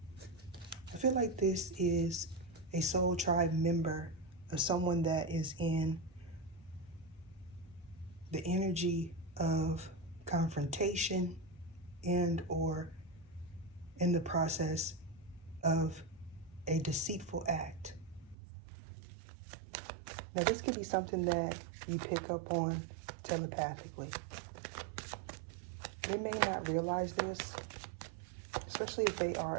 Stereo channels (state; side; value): drops out; left; at 18.4 s